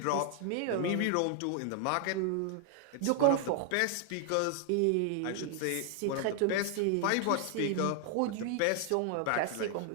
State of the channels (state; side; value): different; both; correlation 0.00